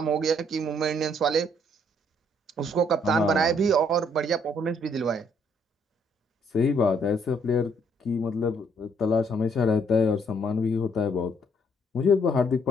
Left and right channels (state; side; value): normal; both; correlation 0.67